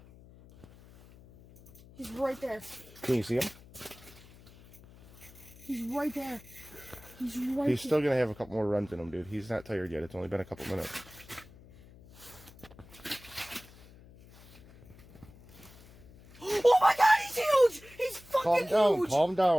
He's right there. Can you see him? He's right there. He's right He's still going to have a couple more runs in him, dude. He's not tired yet. It's only been a couple minutes. Oh my god, he's huge! He's fucking Calm huge! down, calm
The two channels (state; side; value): noise; left; hum, 22 dB below the sound